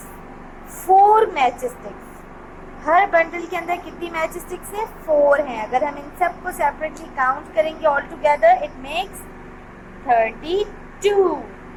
4 matchsticks। Her bundle के अंदर कितनी match sticks है? 4 हैं। अगर हम इन सब को सेपरेटली काउंट करेंगे all together, it makes 32।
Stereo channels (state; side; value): identical; both; correlation 1.00